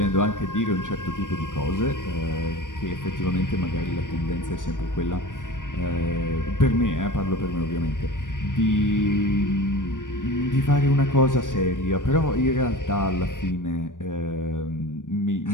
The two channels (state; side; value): late; right; 0.88 ms